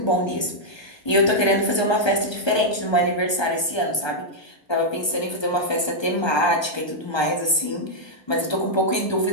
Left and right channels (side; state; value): right; late; 1.2 ms